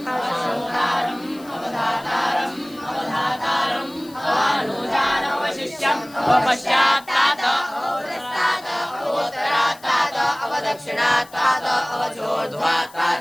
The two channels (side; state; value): left; noise; hiss, 23 dB below the sound